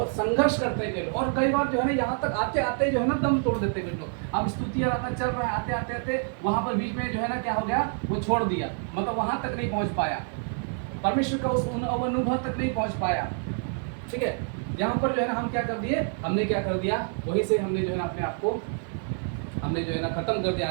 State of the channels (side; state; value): left; silent; 56 dB below the other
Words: संघर्ष करते हैं लोग, और कई बार जो है ना यहाँ तक आते आते जो है ना दम तोड़ देते हैं कुछ लोग। अब स्तुति आराधना चल रहा है, आते आते आते वहाँ पर बीच में जो है ना क्या हो गया, वो छोड़ दिया, मतलब वहाँ तक नहीं पहुँच पाया, परमेश्वर का उस अनुभव तक नहीं पहुँच पाया। ठीक है, यहाँ पर जो है ना हम क्या कर दिए, हमने क्या कर दिया, वहीं से हमने जो है ना अपने आप को हमने जो है ना खत्म कर दिया